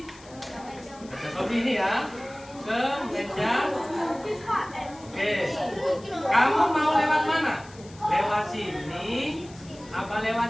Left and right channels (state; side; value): noise; left; hiss, 23 dB below the sound